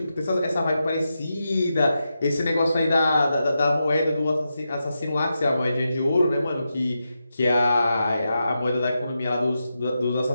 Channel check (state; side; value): inverted; both; correlation -0.88